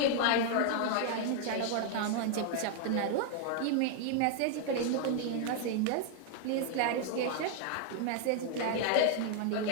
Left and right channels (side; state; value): both; different; correlation 0.00